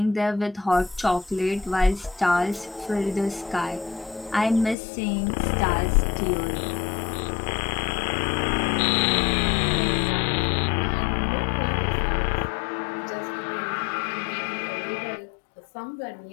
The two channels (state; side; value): drops out; right; at 4.8 s